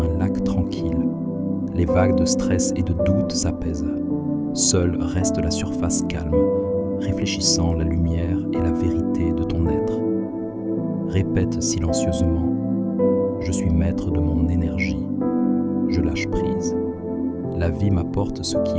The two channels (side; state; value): both; identical; correlation 1.00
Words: un lac tranquille. Les vagues de stress et de doute s'apaisent. Seule reste la surface calme, réfléchissant la lumière et la vérité de ton être. Répète silencieusement « Je suis maître de mon énergie. Je lâche prise. La vie m'apporte ce